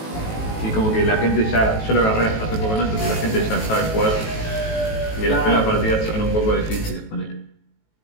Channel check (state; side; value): late; right; 18 ms